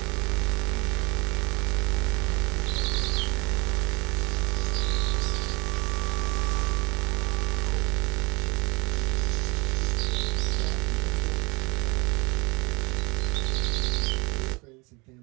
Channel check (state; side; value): quieter; left; 27.1 dB